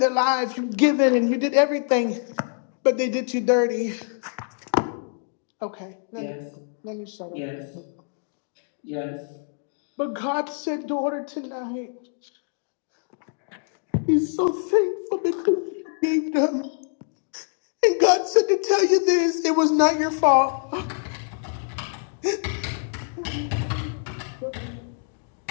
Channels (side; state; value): right; silent; 62 dB below the other